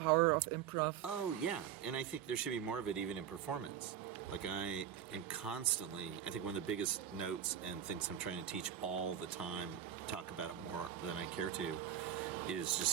of improv. Oh yeah, and I think there should be more of it even in performance. Like I am constantly, I think one of the biggest notes and things I'm trying to teach all the time, talk about it more than I care to, is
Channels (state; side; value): quieter; left; 9.5 dB